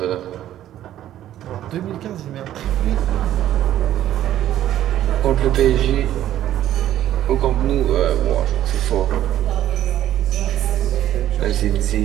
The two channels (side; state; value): left; quieter; 12.3 dB